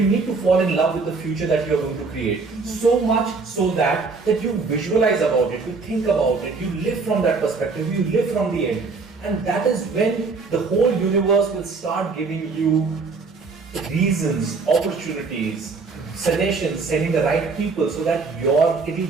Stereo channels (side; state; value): left; quieter; 4.3 dB